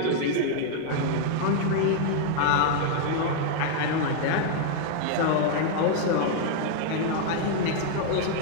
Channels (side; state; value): both; different; correlation -0.01